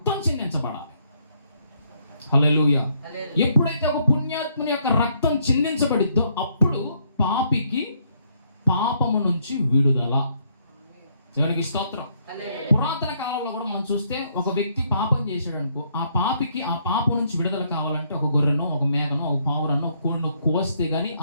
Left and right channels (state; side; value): inverted; both; correlation -0.71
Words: చిందించబడాలి. హల్లెలూయా. ఎప్పుడైతే ఒక పుణ్యాత్ముని యొక్క రక్తం చిందించబడిద్దో అప్పుడు పాపికి పాపము నుంచి విడుదల. దేవునికి స్తోత్రం. పురాతన కాలంలో కూడా మనం చూస్తే ఒక వ్యక్తి పాపం చేశాడు అనుకో, ఆ పాపికి ఆ పాపం నుంచి విడుదల కావాలంటే ఒక గొర్రెనో, ఒక మేకనో, ఒక పావురనో, ఒక కోడినో కోస్తే గానీ